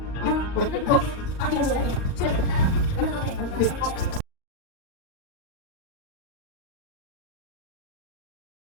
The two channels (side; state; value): right; late; 38 ms